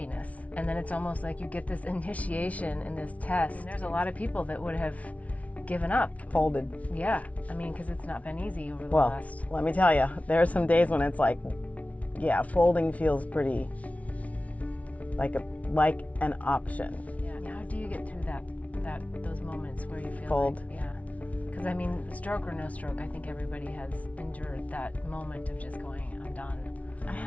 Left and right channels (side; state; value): right; late; 0.067 ms